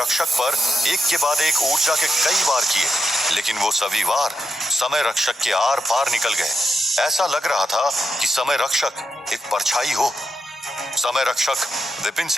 पर एक के बाद एक ऊर्जा के कई वार किए, लेकिन वो सभी वार समय रक्षक के आर पार निकल गए। ऐसा लग रहा था कि समय रक्षक एक परछाई हो। समय रक्षक विपिन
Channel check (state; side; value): normal; both; correlation 0.84